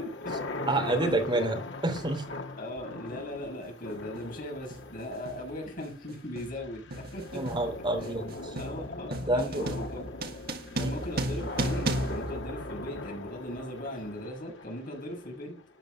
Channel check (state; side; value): normal; both; correlation 0.46